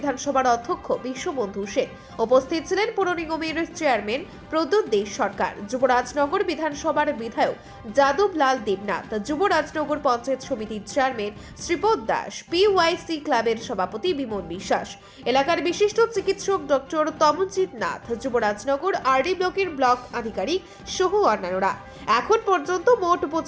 অধ্যক্ষ বিশ্ববন্ধু সেন, উপস্থিত ছিলেন পৌর নিগমের চেয়ারম্যান প্রদ্যুৎ দে সরকার, যুবরাজনগর বিধানসভার বিধায়ক যাদবলাল দেবনাথ, যুবরাজনগর পঞ্চায়েত সমিতির চেয়ারম্যান শ্রীপদ দাস, পিওয়াইসি ক্লাবের সভাপতি বিমল বিশ্বাস, এলাকার বিশিষ্ট চিকিৎসক ডক্টর তমনজিৎ নাথ, যুবরাজনগর আরডি ব্লকের ব্লক আধিকারিক সহ অন্যান্যরা। এখন পর্যন্ত মোট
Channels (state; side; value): identical; both; correlation 1.00